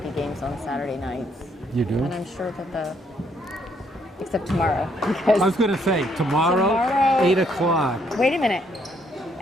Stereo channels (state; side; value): normal; both; correlation 0.71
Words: games on Saturday nights. You do? And I'm sure that except tomorrow. Because I was going to say, tomorrow 8 o'clock. Wait a minute.